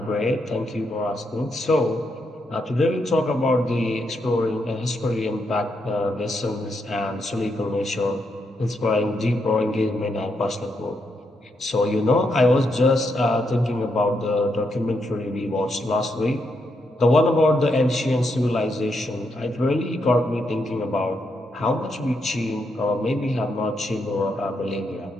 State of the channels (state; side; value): normal; both; correlation 0.80